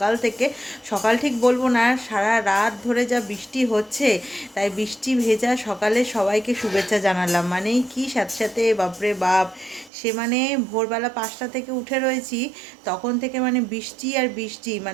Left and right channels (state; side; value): drops out; left; at 9.9 s